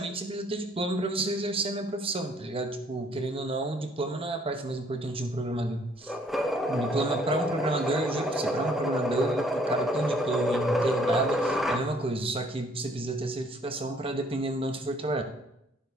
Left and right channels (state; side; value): normal; both; correlation 0.62